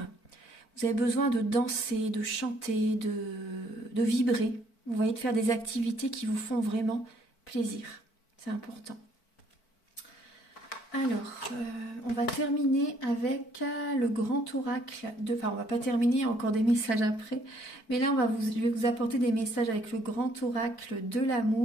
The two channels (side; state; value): right; late; 4.5 ms